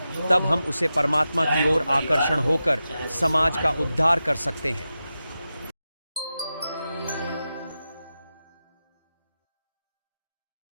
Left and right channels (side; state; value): both; inverted; correlation -0.92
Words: तब हम उसे परमात्मा की ओर आकर्षण होकर समाज का उद्धार कर सकते हैं।